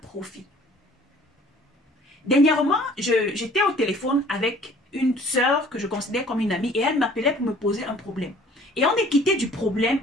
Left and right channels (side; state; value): both; normal; correlation 0.53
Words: Dernièrement, j'étais au téléphone avec une sœur que je considère comme une amie et elle m'appelait pour me poser un problème. Et on est quitté du problème,